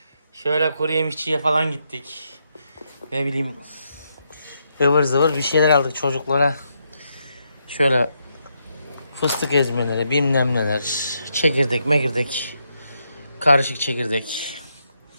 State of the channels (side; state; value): both; inverted; correlation -0.80